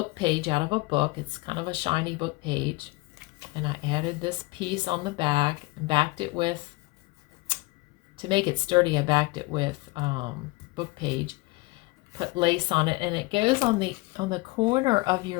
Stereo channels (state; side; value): quieter; right; 22.6 dB